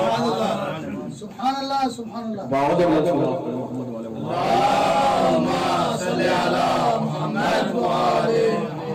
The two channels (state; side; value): identical; both; correlation 1.00